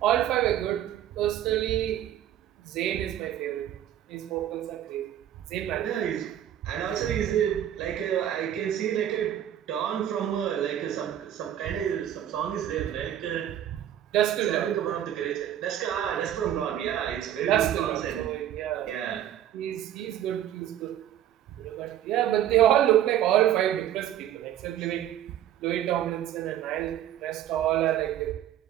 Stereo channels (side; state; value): left; quieter; 11.2 dB